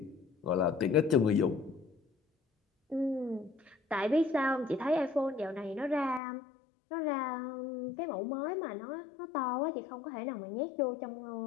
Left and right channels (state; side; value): drops out; right; at 6.2 s